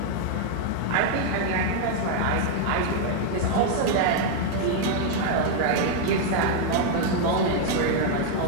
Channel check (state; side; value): different; both; correlation 0.00